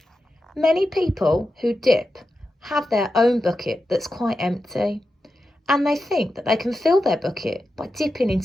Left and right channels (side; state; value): both; normal; correlation 0.90